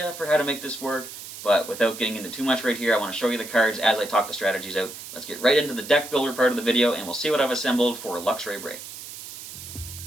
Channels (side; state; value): right; noise; hiss, 12 dB below the sound